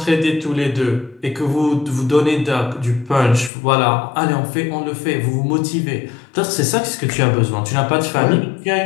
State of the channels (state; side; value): drops out; right; at 3.5 s